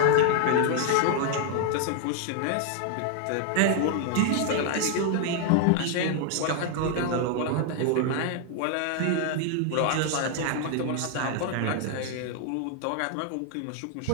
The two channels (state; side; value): different; both; correlation 0.00